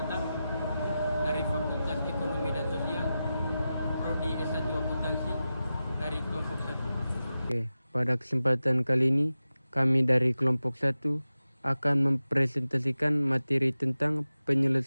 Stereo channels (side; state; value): both; inverted; correlation -0.93